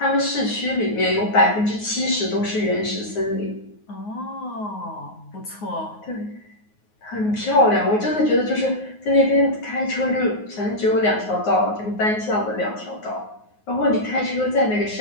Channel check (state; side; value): late; right; 9.5 ms